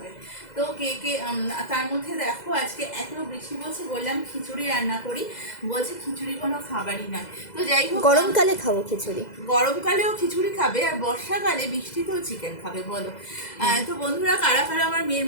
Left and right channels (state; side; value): late; right; 2.0 ms